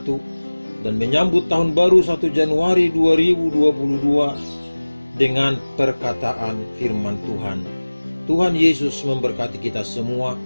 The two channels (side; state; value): both; inverted; correlation -1.00